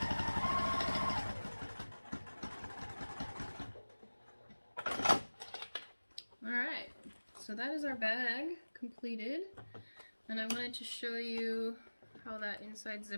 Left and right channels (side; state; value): both; inverted; correlation -1.00